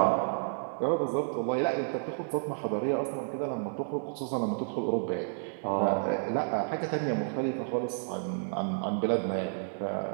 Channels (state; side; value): silent; left; digital silence